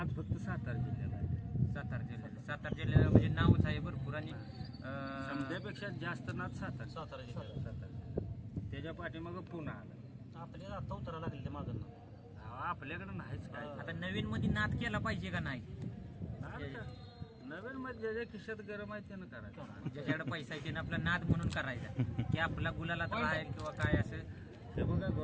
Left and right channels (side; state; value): both; identical; correlation 1.00